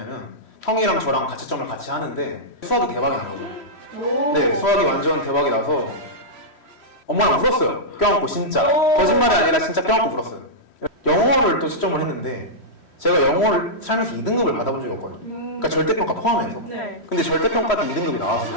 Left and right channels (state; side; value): late; right; 3.1 ms